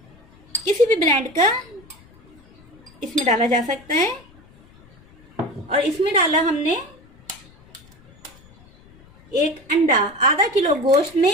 किसी भी ब्रांड का इसमें डाला जा सकता है। और इसमें डाला हमने एक अंडा, आधा किलो गोश्त में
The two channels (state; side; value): noise; left; rumble, 27 dB below the sound